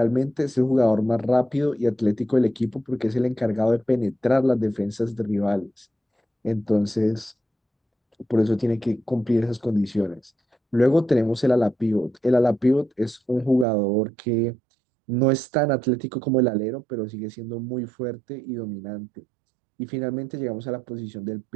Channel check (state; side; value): drops out; left; at 13.7 s